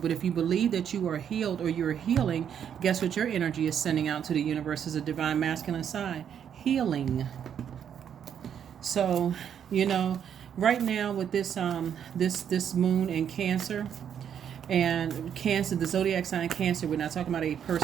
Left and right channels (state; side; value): quieter; left; 8.6 dB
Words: if you believe that you are healed or you're healing, guess what your energy is sending out to the universe as a divine masculine sign? Healing. So, right now with this this moon in Cancer, and Cancer, the zodiac sign Cancer, we're not talking about a